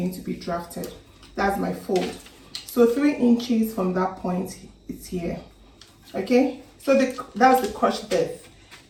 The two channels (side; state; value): both; identical; correlation 1.00